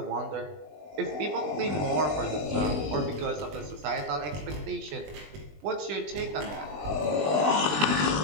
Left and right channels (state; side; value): late; left; 20 ms